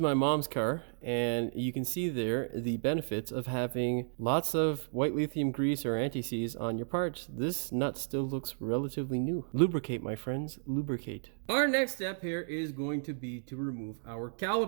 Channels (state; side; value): silent; left; digital silence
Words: mom's car, and you can see there the benefits of having lots of white lithium grease or anti-seize on your parts. This nut still looks relatively new. Lubricate, my friends, lubricate. Our next step here is going to be to remove our